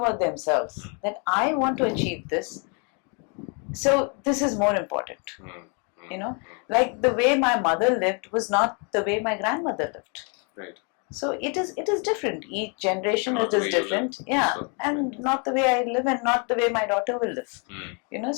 themselves, that I want to achieve this, so this is more important. Like the way my mother lived was not the way my grandmother lived. Right. So it is different. Each generation it is different. Yeah, so, and not the way I live and not the way my daughter will live.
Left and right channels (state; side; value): quieter; right; 36.5 dB